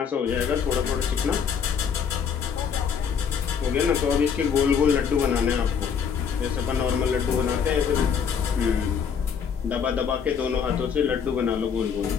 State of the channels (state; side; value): quieter; right; 7.0 dB